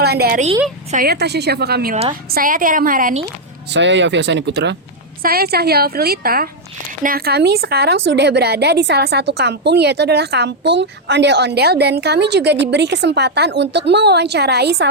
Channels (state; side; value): normal; both; correlation -0.01